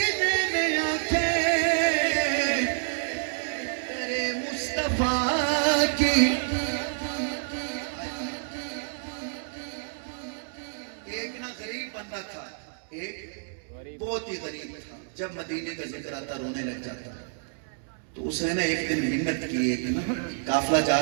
में आंखें, तेरे मुस्तफा की। एक ना गरीब बंदा था, एक बहुत ही गरीब था, जब मदीने का जिक्र आता रोने लग जाता। तो उसने ना एक दिन मिन्नत की, एक ना काफिला जा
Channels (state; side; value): silent; left; 59 dB below the other